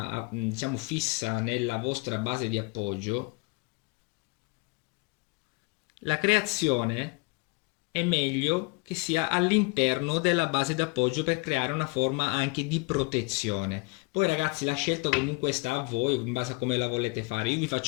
diciamo fissa nella vostra base di appoggio, la creazione è meglio che sia all'interno della base d'appoggio per creare una forma anche di protezione. Poi ragazzi la scelta comunque sta a voi in base a come la volete fare. Io vi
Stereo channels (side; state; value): right; quieter; 26.9 dB